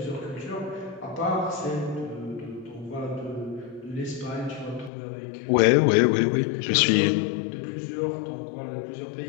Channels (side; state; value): right; drops out; at 4.9 s